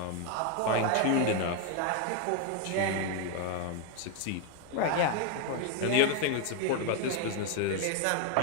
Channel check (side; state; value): both; different; correlation 0.01